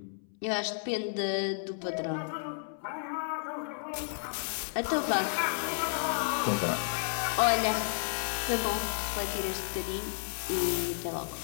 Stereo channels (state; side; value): silent; right; 56 dB below the other